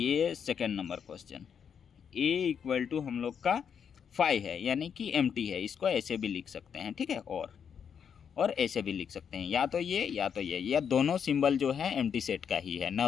second number question. A equal to हम लोग का 5 है यानी कि MT है, इसको ऐसे भी लिख सकते हैं। ठीक है, और ऐसे भी लिख सकते हैं, या तो ये या तो ये, या दोनों सिंबल जो है एम्प्टी सेट का ही है।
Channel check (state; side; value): quieter; right; 7.5 dB